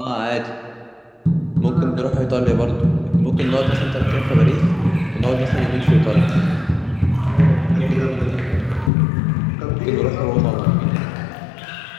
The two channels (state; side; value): drops out; right; at 8.9 s